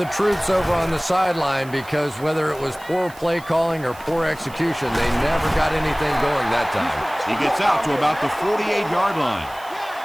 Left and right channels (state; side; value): noise; right; hiss, 21 dB below the sound